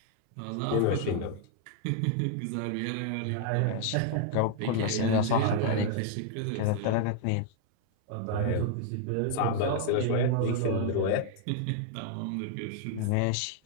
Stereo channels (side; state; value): both; different; correlation 0.00